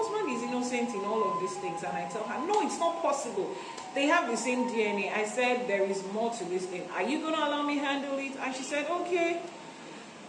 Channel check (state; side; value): identical; both; correlation 1.00